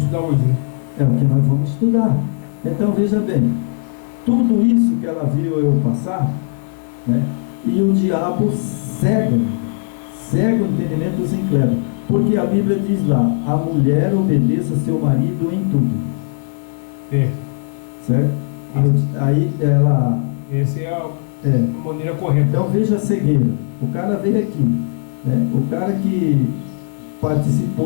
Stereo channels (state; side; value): silent; right; digital silence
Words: estudando hoje, né? É o que nós vamos estudar. Então, veja bem, tudo isso que ela viu eu passar, né? E o diabo cega o entendimento dos incrédulos. Porque a Bíblia diz lá: a mulher obedeça seu marido em tudo. Certo? Aí ela... Essa é a maneira correta. Então veja a cegueira. O cara veio aqui, né? O cara que